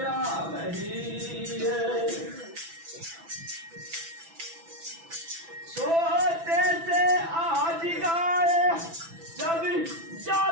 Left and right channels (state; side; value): late; left; 6.0 ms